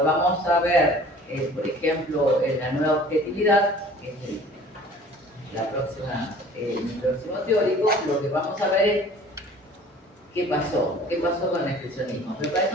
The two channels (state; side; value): normal; both; correlation 0.48